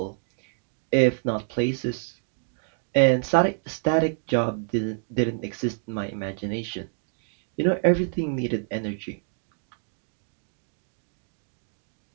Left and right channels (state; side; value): silent; left; digital silence